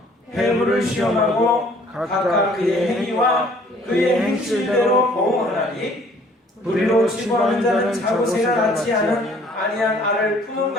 회부를 시험하고 각각 그의 행위와 그의 행실대로 보응하나니 불의로 치부하는 자는 자고새가 낳지 아니한 알을 품음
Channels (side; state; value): both; normal; correlation 0.57